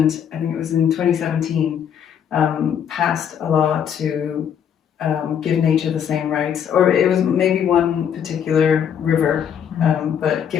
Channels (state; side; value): quieter; right; 8.4 dB